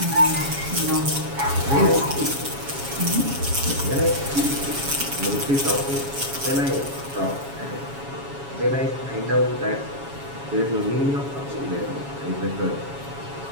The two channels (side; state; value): left; late; 7.2 ms